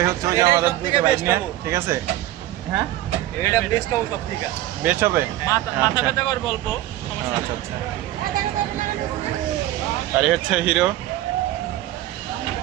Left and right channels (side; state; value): left; quieter; 14.8 dB